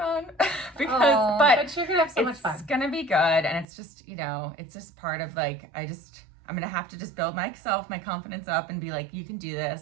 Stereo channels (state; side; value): drops out; left; at 3.7 s